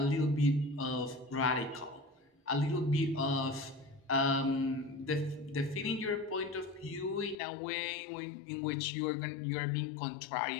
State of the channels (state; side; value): drops out; right; at 7.4 s